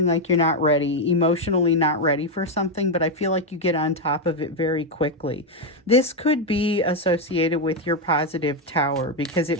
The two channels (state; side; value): normal; both; correlation 0.04